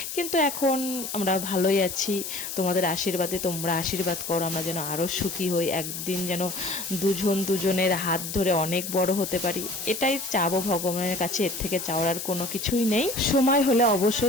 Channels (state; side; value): noise; left; hiss, 6 dB below the sound